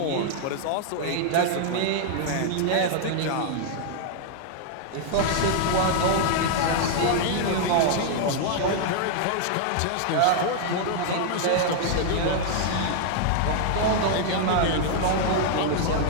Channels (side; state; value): both; different; correlation 0.00